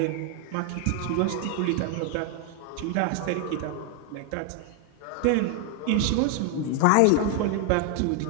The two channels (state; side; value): different; both; correlation 0.01